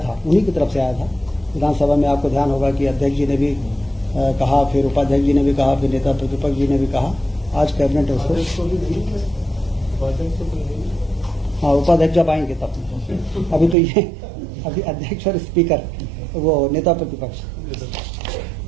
था उन्हीं की तरफ से आया था। विधानसभा में आपको ध्यान होगा कि अध्यक्ष जी ने भी कहा, फिर उपाध्यक्ष जी ने भी कहा, फिर नेता प्रतिपक्ष जी ने भी कहा। आज कैबिनेट उसको, हाँ उपाध्यक्ष जब आएंगे तब, अभी तो ये अभी अध्यक्ष और स्पीकर वो नेता प्रतिपक्ष,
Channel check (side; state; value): left; drops out; at 13.8 s